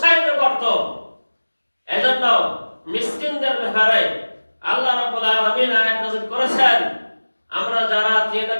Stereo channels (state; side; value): inverted; both; correlation -1.00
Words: করতো। এজন্য মিসকিনদের ব্যাপারে আল্লাহ রাব্বুল আলামিন আয়াত নাযিল করেছেন। আমরা যারা